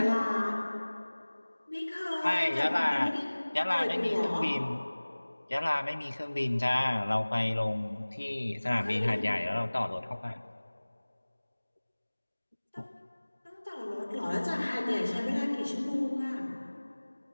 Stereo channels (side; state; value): both; inverted; correlation -1.00